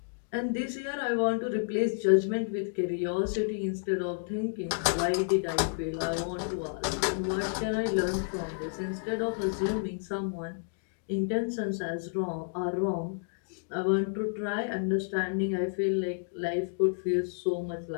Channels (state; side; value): silent; right; digital silence